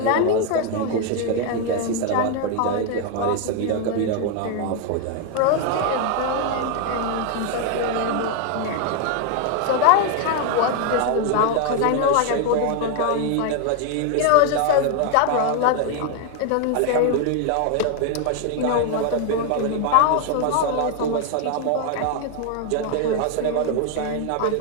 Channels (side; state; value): both; different; correlation 0.01